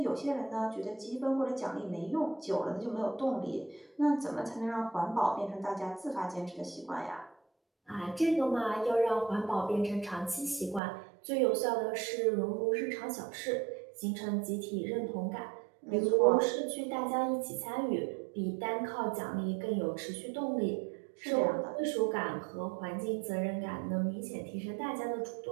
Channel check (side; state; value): left; drops out; at 10.8 s